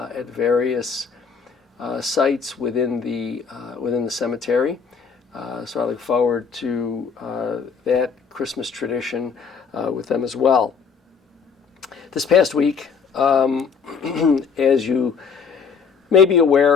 various sites within the cemetery. So I look forward to that Christmas tradition with them as well. This past week, as you may be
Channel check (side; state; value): right; quieter; 5.9 dB